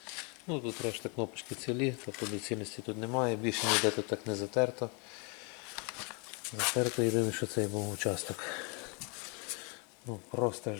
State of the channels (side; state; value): right; quieter; 34.3 dB